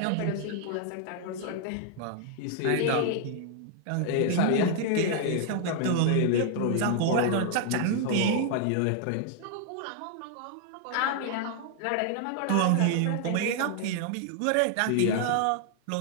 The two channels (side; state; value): both; different; correlation 0.00